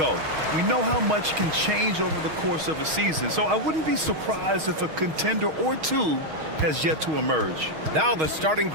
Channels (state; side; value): late; left; 6.4 ms